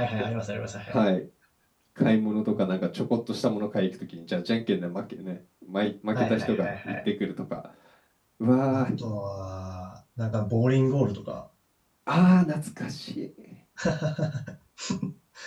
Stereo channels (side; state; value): both; identical; correlation 1.00